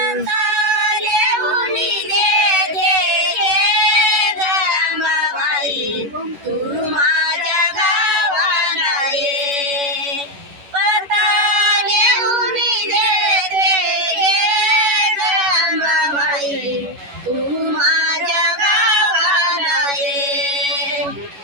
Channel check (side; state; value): left; late; 11 ms